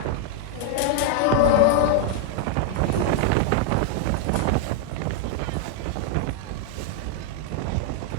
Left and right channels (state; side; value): different; both; correlation 0.00